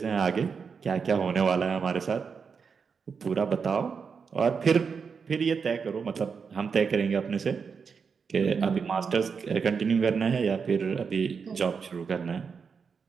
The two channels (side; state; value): left; quieter; 5.8 dB